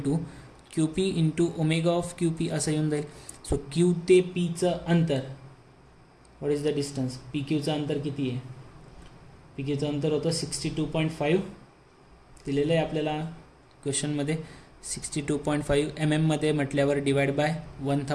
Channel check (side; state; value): both; identical; correlation 1.00